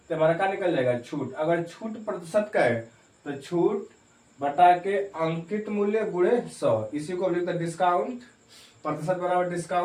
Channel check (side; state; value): both; identical; correlation 1.00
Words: हमारा क्या निकल जाएगा, छूट। अगर छूट प्रतिशत का है तो छूट बटा के अंकित मूल्य गुणे 100, इसी को लिखते हैं डिस्काउंट प्रतिशत बराबर